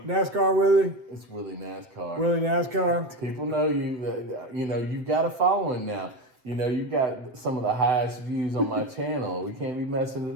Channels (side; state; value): left; late; 7.8 ms